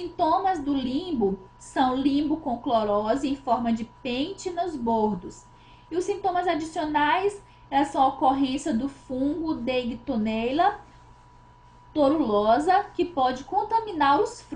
do limbo são limbo com clorose em forma de pente nos bordos. E os sintomas adicionais são a ocorrência do fungo Deightonella torulosa, que pode contaminar os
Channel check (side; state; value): both; identical; correlation 1.00